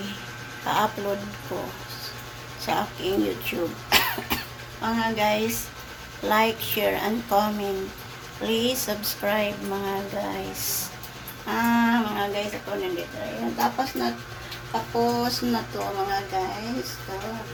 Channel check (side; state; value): both; identical; correlation 1.00